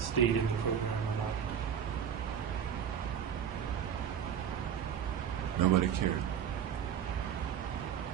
in the program or not. Nobody cared.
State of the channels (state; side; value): quieter; left; 8.6 dB